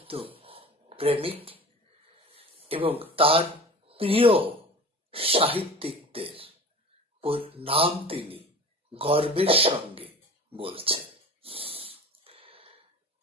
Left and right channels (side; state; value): both; normal; correlation 0.38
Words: প্রেমিক এবং তার প্রিয় সাহিত্যিকদের নাম তিনি গর্বের সঙ্গে